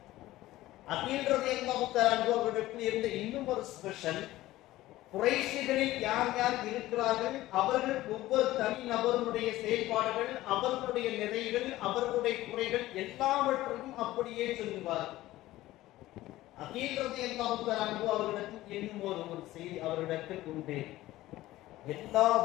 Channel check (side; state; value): right; quieter; 16.3 dB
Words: அகீல் ரலியல்லாஹு தஆலா அன்ஹு அவர்களிடத்தில் இருந்த இன்னும் ஒரு ஸ்பெஷல், குறைஷிகளில் யார் யார் இருக்கிறார்கள், அவர்கள் ஒவ்வொரு தனி நபர்களுடைய செயல்பாடுகள், அவர்களுடைய நிறைகள், அவர்களுடைய குறைகள் எல்லாவற்றையும் அப்படியே சொல்லுவார். அகீல் ரலியல்லாஹு தஆலா அன்ஹு அவர்களிடத்தில் இன்னும் ஒரு செய்தி அவர்களிடத்தில் உண்டு. எல்லா